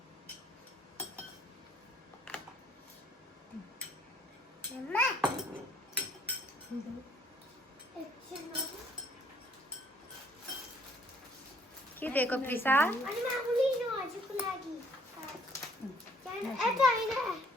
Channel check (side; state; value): both; normal; correlation 0.63